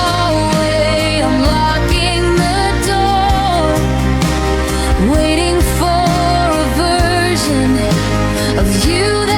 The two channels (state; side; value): identical; both; correlation 1.00